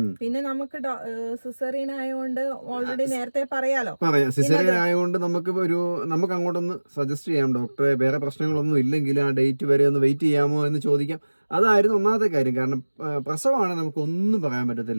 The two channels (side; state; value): both; inverted; correlation -1.00